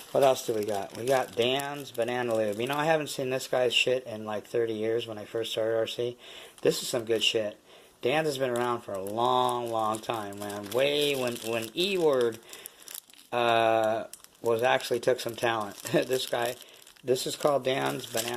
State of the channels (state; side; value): identical; both; correlation 1.00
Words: What else do we got? We got Dan's Banana Lube. I haven't seen this guy's shit in like 30 years when I first started RC. This is some good shit. Dan's has been around for a long, long time, man. Way when E-Word took some talent. This is called Dan's